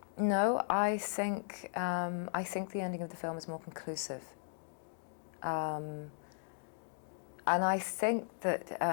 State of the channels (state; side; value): silent; right; digital silence